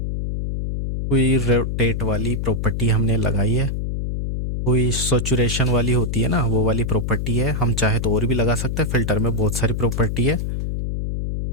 कोई रोटेट वाली प्रॉपर्टी हमने लगाई है, कोई सैचुरेशन वाली होती है ना वो वाली प्रॉपर्टी है। हम चाहे तो और भी लगा सकते हैं, फिल्टर में बहुत सारी प्रॉपर्टी है।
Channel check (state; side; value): noise; left; hum, 2 dB below the sound